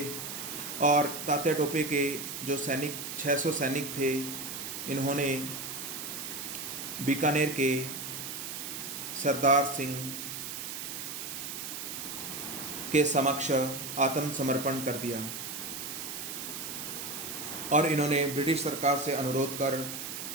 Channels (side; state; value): right; noise; hiss, 6 dB below the sound